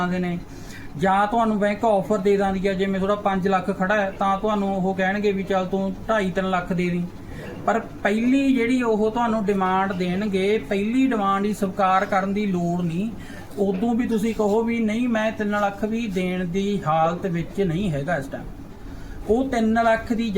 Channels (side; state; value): both; identical; correlation 1.00